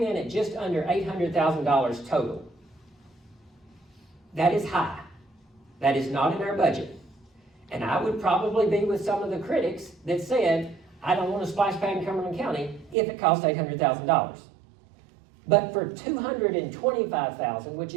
in at just under $800,000 total. That is high. That is not in our budget. And I would probably be with some of the critics that said, I don't want a splash pad in Cumberland County if it costs $800,000. But for $225,000, which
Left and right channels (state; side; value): drops out; left; at 13.0 s